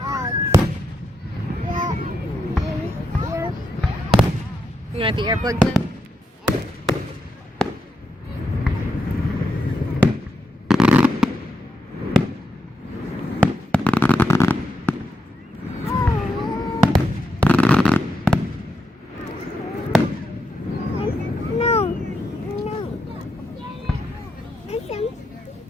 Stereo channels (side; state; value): both; normal; correlation 0.83